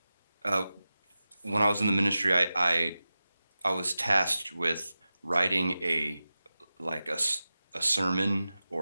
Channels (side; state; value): both; inverted; correlation -0.94